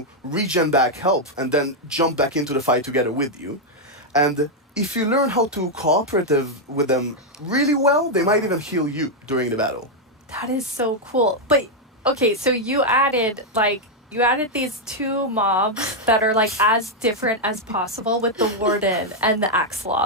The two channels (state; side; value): normal; both; correlation -0.01